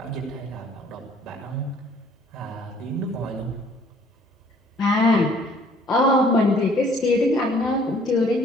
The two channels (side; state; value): both; normal; correlation 0.58